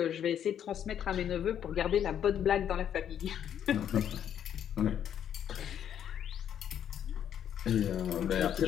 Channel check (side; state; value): right; quieter; 9.5 dB